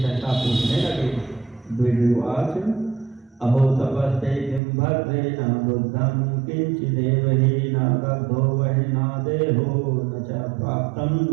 सहसा पूछने लगे। द्विजोवाच अहो तपस्ते किं भद्रे न बुद्धं किंचिदेव हि न दग्धो वहि न देहो न च प्राप्तं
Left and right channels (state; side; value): drops out; left; at 4.6 s